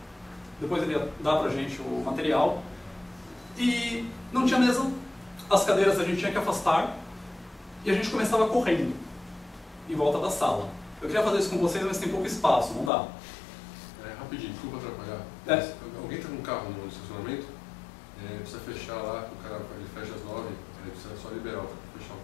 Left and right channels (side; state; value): right; drops out; at 12.9 s